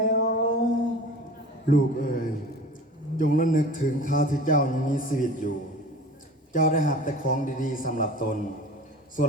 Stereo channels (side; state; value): both; normal; correlation 0.40